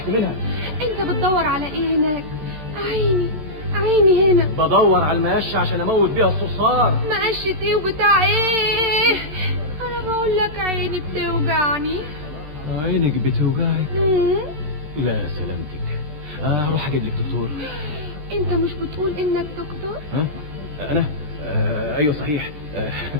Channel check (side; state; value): left; late; 13 ms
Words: منها. انت بتدور على ايه هناك؟ عيني عيني هنا. بدور على المقشه عشان اموت بيها الصرصار. مقشة ايه وبتاع ايه؟ انا بقول لك عيني بتوجعني. عينك بتوجعك؟ لا سلامتك. اروح اجيب لك دكتور. انت مش بتقول انك دكتور؟ ها؟ انا؟ ايوه صحيح.